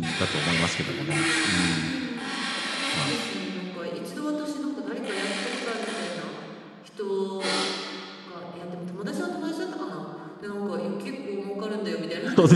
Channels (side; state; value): both; identical; correlation 1.00